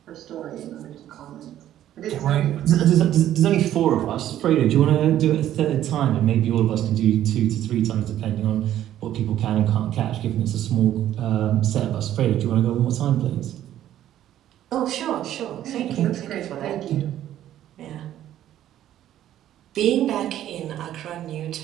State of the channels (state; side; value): quieter; left; 12.1 dB